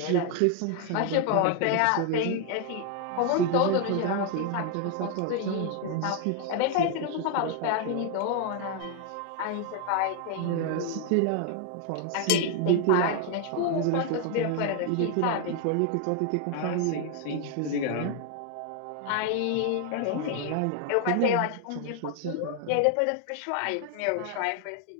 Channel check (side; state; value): both; different; correlation 0.01